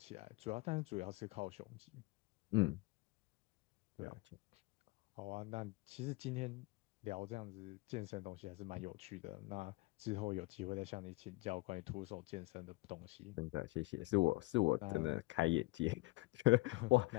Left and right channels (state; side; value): quieter; right; 22.2 dB